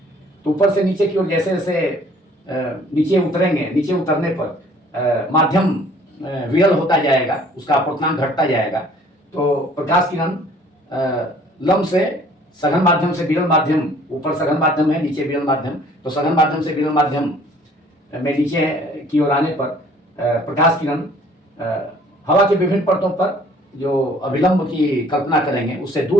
तो ऊपर से नीचे की ओर जैसे जैसे नीचे उतरेंगे, नीचे उतरने पर माध्यम विरल होता जाएगा, उसका अपर्तांक घटता जाएगा। तो प्रकाश किरण लंब से सघन माध्यम से विरल माध्यम, ऊपर सघन माध्यम है, नीचे विरल माध्यम, तो सघन माध्यम से विरल माध्यम में नीचे की ओर आने पर प्रकाश किरण हवा की विभिन्न परतों पर जो अभिलंब की कल्पना करेंगे उससे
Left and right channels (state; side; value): normal; both; correlation 0.55